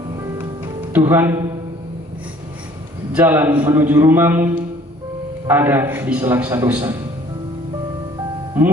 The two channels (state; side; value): normal; both; correlation 0.55